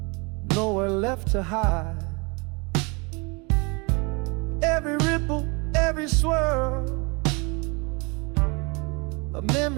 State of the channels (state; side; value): quieter; left; 29.8 dB